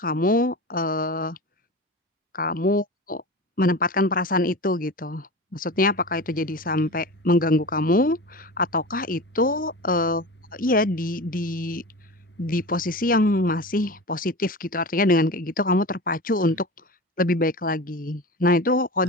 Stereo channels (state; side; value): normal; both; correlation 0.30